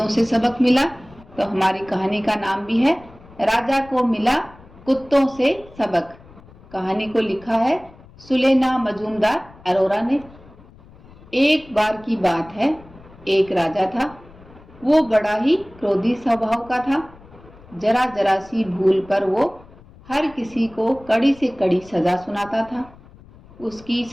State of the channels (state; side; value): noise; left; rumble, 23 dB below the sound